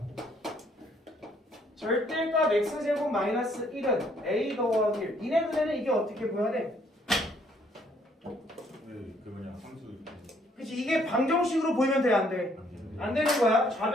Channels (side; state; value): both; normal; correlation 0.66